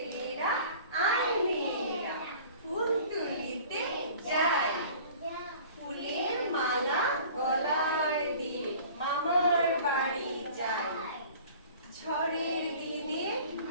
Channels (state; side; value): inverted; both; correlation -0.46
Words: আয় মেয়েরা ফুল তুলিতে যাই, ফুলের মালা গলায় দিয়ে মামার বাড়ি যাই। ঝড়ের দিনে